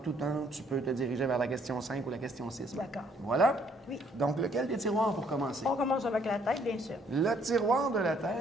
temps, tu peux te diriger vers la question 5 ou la question 6. D'accord. Voilà. Oui. Donc, lequel des tiroirs pour commencer? On commence avec la tête, bien sûr. Le tiroir de la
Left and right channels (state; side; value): normal; both; correlation 0.65